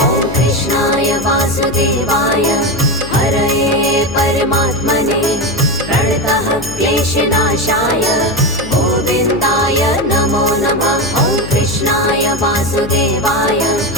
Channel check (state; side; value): noise; left; hum, 12 dB below the sound